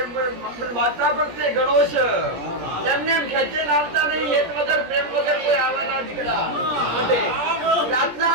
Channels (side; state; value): left; late; 17 ms